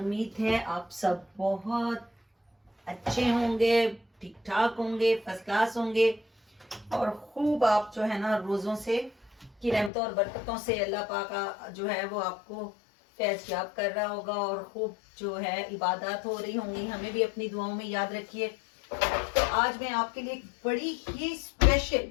है आप सब बहुत अच्छे होंगे, ठीक ठाक होंगे, फर्स्ट क्लास होंगे और खूब आप जो है ना रोज़ों से की रहमतों और बरकतों से अल्लाह पाक का जो है वो आपको फैज़ याब कर रहा होगा और खूब जो है इबादत हो रही होंगी। हमें भी अपनी दुआओं में याद रखिए। तो आज मैं आपके लिए एक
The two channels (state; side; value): drops out; right; at 9.9 s